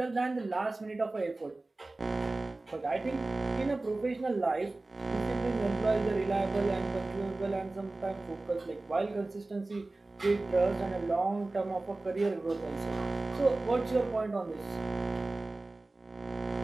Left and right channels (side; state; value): left; quieter; 3.1 dB